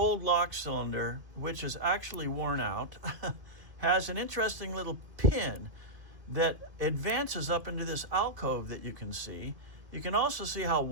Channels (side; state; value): left; late; 2.5 ms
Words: lock cylinder, which is actually worn out, has an interesting little pin that advances up into this alcove that you can see. You can also see how